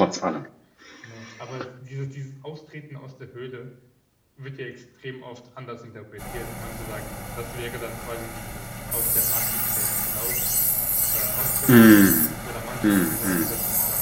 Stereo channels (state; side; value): identical; both; correlation 1.00